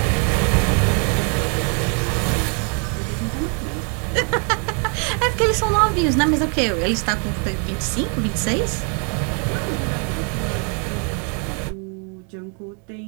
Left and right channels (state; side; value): quieter; left; 38.2 dB